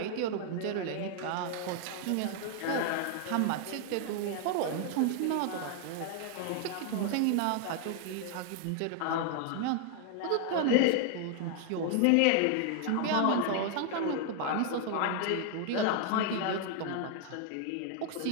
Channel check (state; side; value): different; both; correlation 0.00